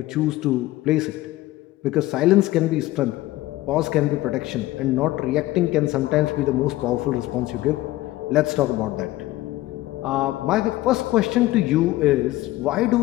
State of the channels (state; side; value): quieter; right; 16.9 dB